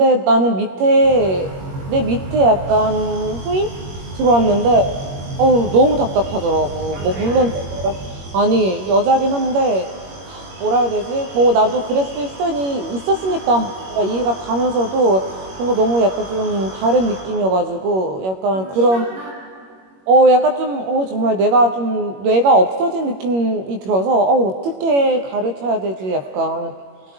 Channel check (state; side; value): late; left; 21 ms